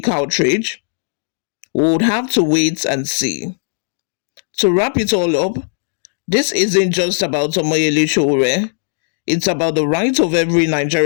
outrage? We would have to wait and see. To wrap it all up, this isn't just about Omoyele Sowore. It's about the right of every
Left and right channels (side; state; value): right; silent; digital silence